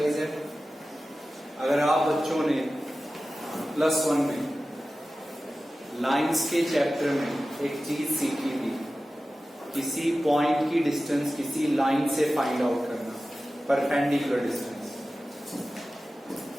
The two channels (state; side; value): normal; both; correlation 0.95